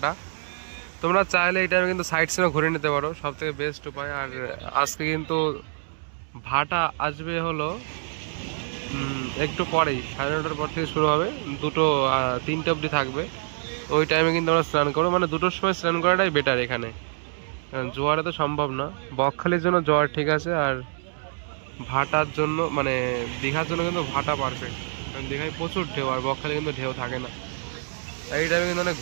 তোমরা চাইলে এই টাইমে কিন্তু সাইড সিনও ঘুরে নিতে পারো, সব থেকে বেস্ট উপায়। আর আজকে কিন্তু ভাটা আসবে হলো একটু পরেই, 9:30 পর থেকে শুরু হবে, 2-3টে অবধি থাকবে। ওই টাইমে কিন্তু আমরা স্নান করবো, মানে 2টোর সময় স্নান করাটাই বেটার এখানে, কারণ জোয়ারে তো সম্ভব না। বকখালির জন্য জোয়ার ঠিক আছে, আর ভাটার জন্য মানে দীঘার জন্য কিন্তু ভাটা পারফেক্ট, কারণ দীঘায় প্রচুর ঢেউ, আর বকখালি কিন্তু ঢেউ থাকে না। এই টাইমে কিন্তু অনেক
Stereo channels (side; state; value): left; silent; 61 dB below the other